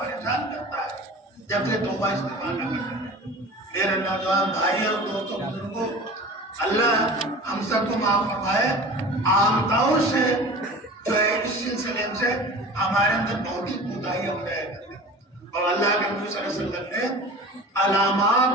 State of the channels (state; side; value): normal; both; correlation 0.38